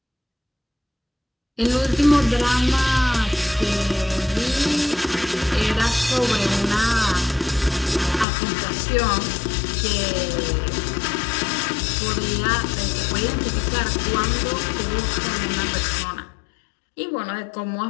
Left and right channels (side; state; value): right; drops out; at 8.2 s